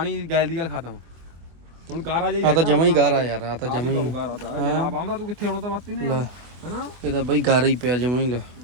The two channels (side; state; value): left; late; 24 ms